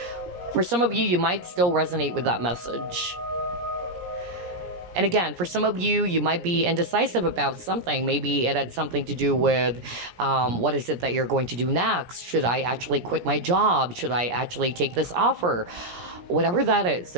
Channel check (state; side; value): late; left; 17 ms